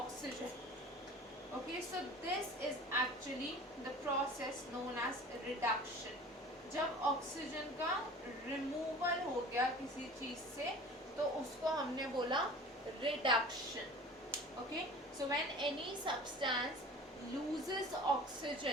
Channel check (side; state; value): both; normal; correlation 0.41